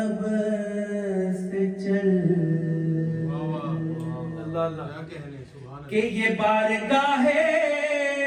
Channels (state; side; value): identical; both; correlation 1.00